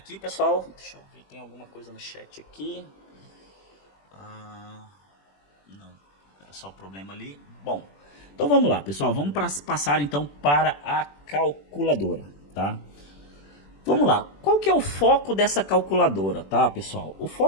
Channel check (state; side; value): late; right; 21 ms